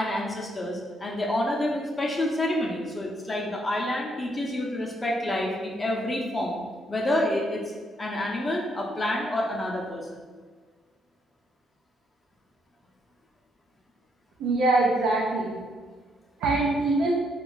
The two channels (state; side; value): normal; both; correlation 0.74